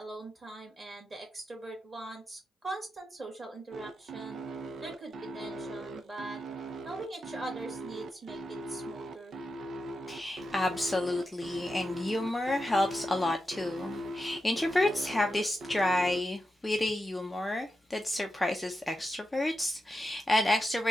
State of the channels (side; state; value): both; normal; correlation 0.88